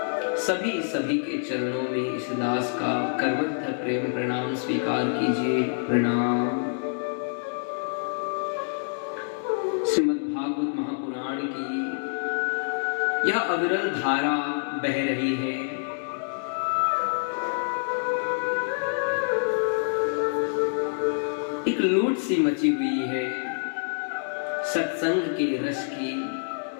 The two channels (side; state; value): right; silent; digital silence